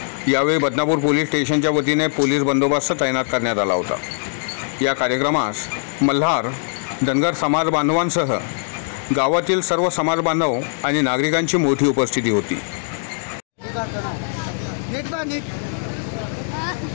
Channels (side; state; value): right; silent; digital silence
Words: यावेळी बदनापूर पोलीस स्टेशनच्या वतीने पोलीस बंदोबस्त तैनात करण्यात आला होता। या कार्यक्रमास मल्हार धनगर समाज बांधवांसह गावातील सर्व समाज बांधव आणि नागरिकांची मोठी उपस्थिती होती।